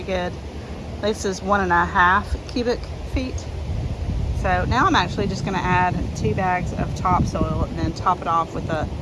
good. This is 1.5 cubic feet. So now I'm actually just gonna add 2 bags of topsoil and then top it off with the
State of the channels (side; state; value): both; identical; correlation 1.00